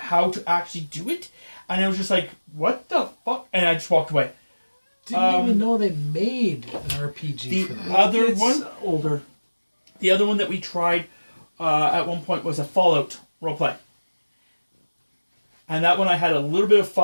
to actually do it. And I was just like, "What the fuck?" And I just walked away. Didn't even know they made an RPG The for that. other It's one, older. the other one that we tried at one point was a Fallout roleplay. And that one I had a little bit of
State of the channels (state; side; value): inverted; both; correlation -1.00